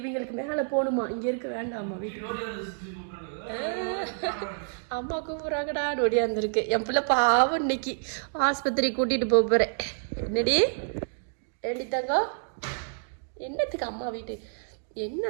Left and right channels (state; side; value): silent; left; digital silence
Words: மேலே போகணுமா? இங்கே இருக்க வேண்டாமா வீட்டுக்கு? அம்மா கூப்பிட்றாங்கடா நொடியாந்துருக்கு. என் பிள்ளை பாவம் இன்னைக்கு ஆஸ்பத்திரி கூட்டிகிட்டு போக போகிறேன். என்னடி ஏண்டி தங்கம், என்னத்துக்கு அம்மா வீட்டு